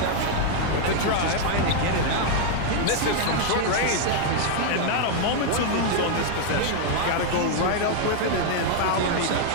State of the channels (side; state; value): both; different; correlation 0.00